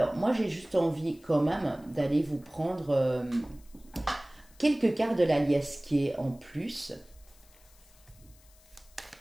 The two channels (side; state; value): left; noise; hiss, 28 dB below the sound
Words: moi j'ai juste envie quand même d'aller vous prendre quelques cartes de la liesquier en plus.